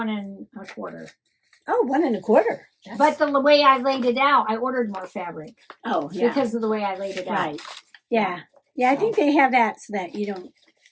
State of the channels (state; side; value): identical; both; correlation 1.00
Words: 1/4. Oh, 1 1/4. But the way I laid it out, I ordered more fabric. Oh, yeah. Because of the way I laid it out. Right. Yeah. Yeah, I think they have that so that you don't